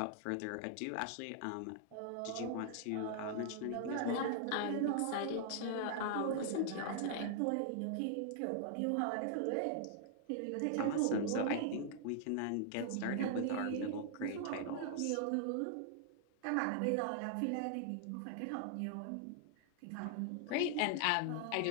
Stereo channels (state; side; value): different; both; correlation -0.01